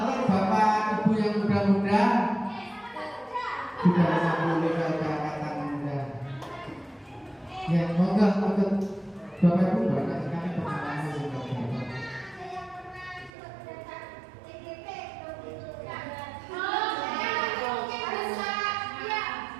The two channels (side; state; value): left; drops out; at 13.3 s